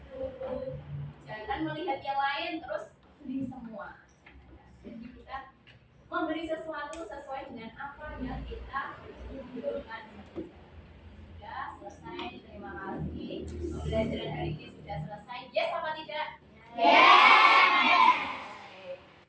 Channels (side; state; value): both; identical; correlation 1.00